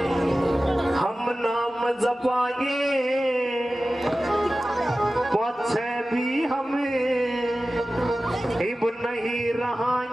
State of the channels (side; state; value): both; normal; correlation 0.95